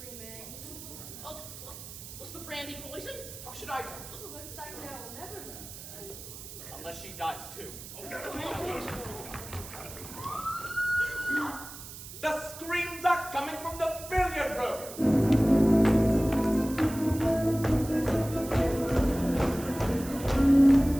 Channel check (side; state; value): right; noise; hiss, 13 dB below the sound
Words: Oh, was the brandy poisoned? How should I know? Looks like now we'll never know. Unless she dies too. The screams are coming from the billiard room.